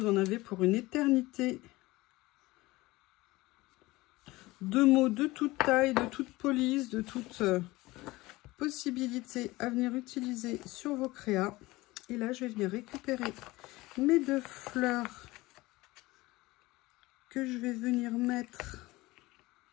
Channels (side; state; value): right; quieter; 20.1 dB